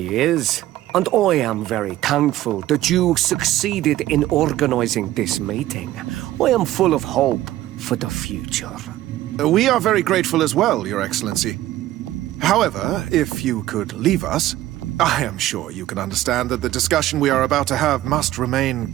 is. And I am very thankful that you succeeded in organizing this meeting. I am full of hope for the future. We are very grateful as well, Your Excellency. However, if you could leave us, I am sure you can understand that the discussion we are about to have must remain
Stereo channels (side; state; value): left; quieter; 14.8 dB